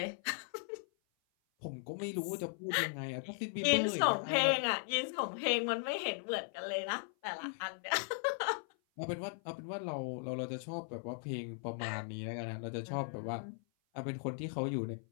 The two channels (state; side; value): silent; right; 53 dB below the other